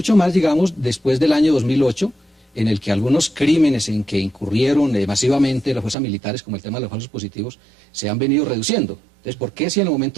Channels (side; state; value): left; drops out; at 6.0 s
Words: más, digamos, después del año 2008, en el que algunos crímenes en que incurrieron masivamente las fuerzas militares, como el tema de los falsos positivos, se han venido reduciendo. Entonces, ¿por qué si en el